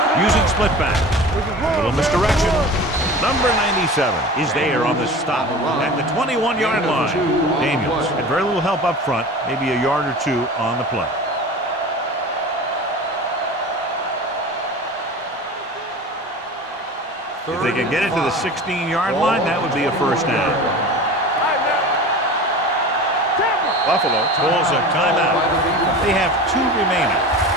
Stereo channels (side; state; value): both; normal; correlation 0.35